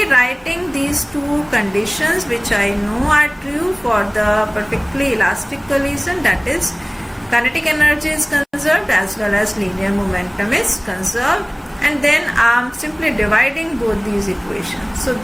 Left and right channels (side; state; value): both; identical; correlation 1.00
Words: writing these two conditions which I know are true for the perfectly elastic collision, that is kinetic energy is conserved as well as linear momentum is conserved, and then I am simply dividing both these equations. So